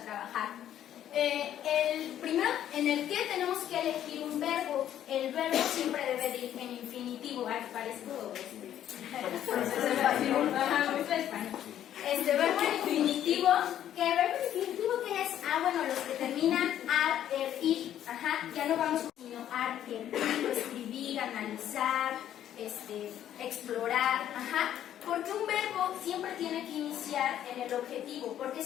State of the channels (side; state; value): right; quieter; 11.0 dB